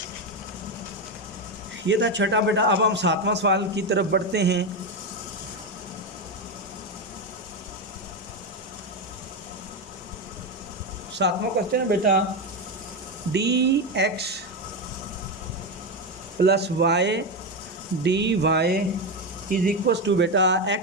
ये था छठा बेटा। अब हम 7वां सवाल की तरफ बढ़ते हैं। सातवां क्वेश्चन है बेटा, dx plus y D Y is equal to बेटा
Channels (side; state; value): both; normal; correlation 0.12